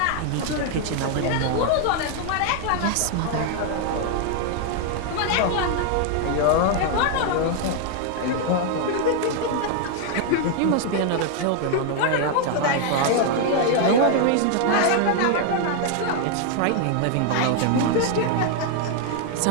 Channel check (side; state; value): both; different; correlation 0.00